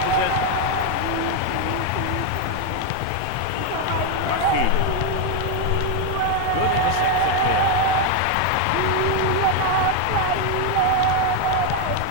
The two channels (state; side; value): different; both; correlation 0.01